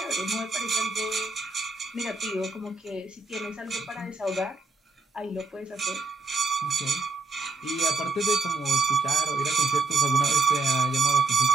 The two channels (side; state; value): left; quieter; 3.7 dB